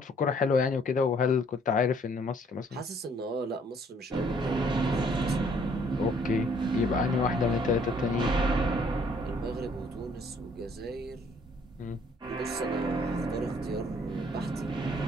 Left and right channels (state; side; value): normal; both; correlation 0.62